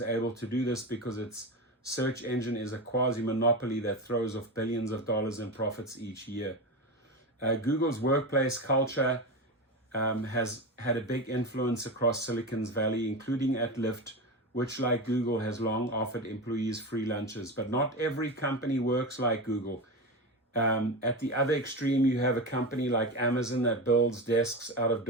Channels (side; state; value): both; normal; correlation 0.21